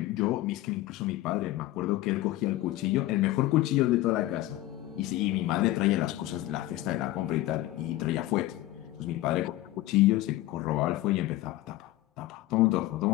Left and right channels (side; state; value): right; quieter; 16.3 dB